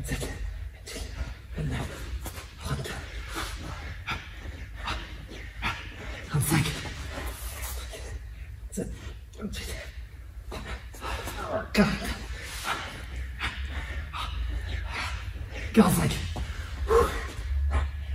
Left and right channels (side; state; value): both; identical; correlation 1.00